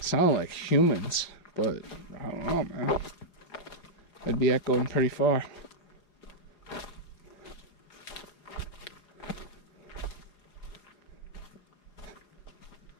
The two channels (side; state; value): right; late; 4.9 ms